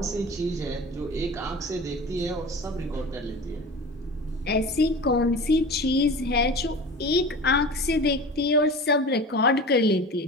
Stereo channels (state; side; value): normal; both; correlation 0.35